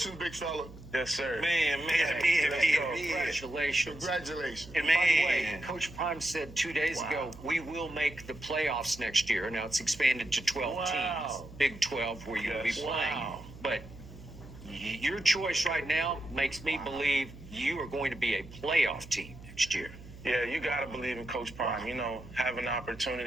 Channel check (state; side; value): noise; right; hum, 17 dB below the sound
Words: big fella. Yes, sir. Man. Congratulations. Congratulations. And by the way, Coach Prime said 2 days ago, we will make the playoffs next year. Now it's expanded to 12 teams. Big 12 where you'll be playing. But your choice right now makes me believe you are going to be a playoff team next year. Yeah, you got to believe in Coach Prime. You know, having the